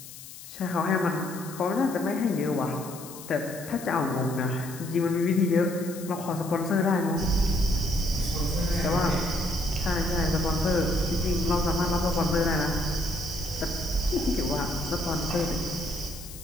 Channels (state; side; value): noise; left; hiss, 15 dB below the sound